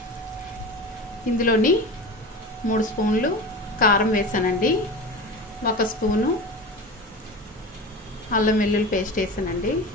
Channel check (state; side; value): normal; both; correlation 0.30